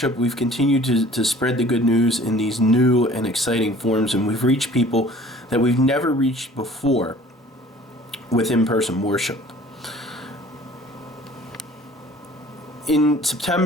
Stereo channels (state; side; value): normal; both; correlation 0.50